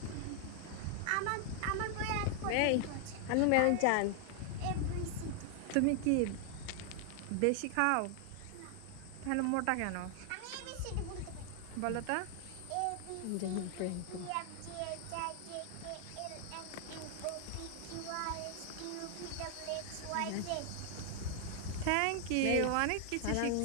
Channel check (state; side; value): different; both; correlation 0.00